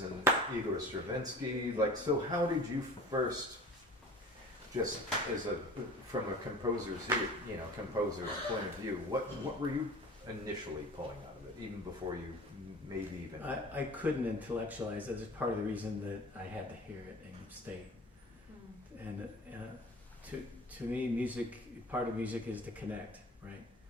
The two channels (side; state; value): both; normal; correlation 0.40